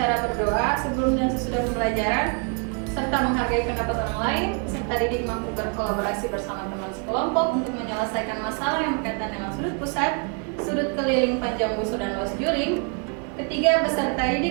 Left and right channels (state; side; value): quieter; left; 38.2 dB